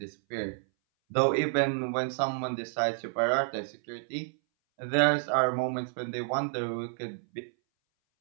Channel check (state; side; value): silent; left; 58 dB below the other